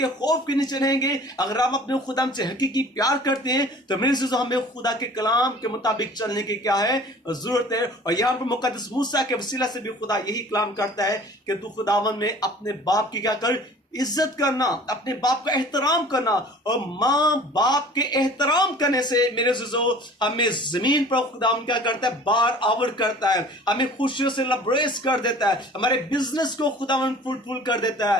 खौफ के नीचे रहेंगे, अगर आप अपने खुदा से हकीकी प्यार करते हैं, तो मेरे से हमें खुदा के कलाम के मुताबिक चलने की क्या है? जरूरत है। और यहाँ पर मुकद्दस मूसा के वसीला से भी खुदा यही कलाम करता है कि तू खुदावन में अपने बाप की क्या कर? इज्जत करना, अपने बाप का एहतराम करना। और माँ बाप के एहतराम करने से मेरे अज़ीज़ों, हमें जमीन पर खुदा क्या करता है? बार आवर करता है, हमें खुशियों से लबरेज कर देता है, हमारे बिजनेस को खुदावन फ्रूटफुल कर देता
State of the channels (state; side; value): normal; both; correlation 0.47